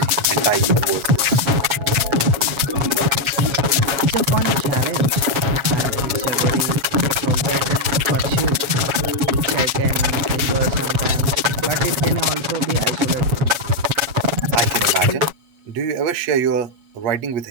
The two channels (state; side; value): late; left; 7.3 ms